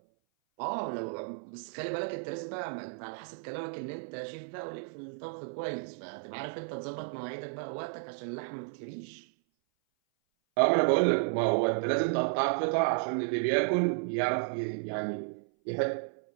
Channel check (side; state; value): left; silent; 56 dB below the other